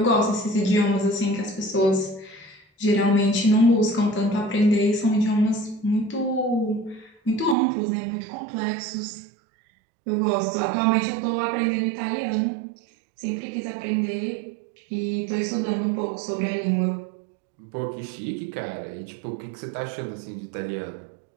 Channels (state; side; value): drops out; left; at 7.6 s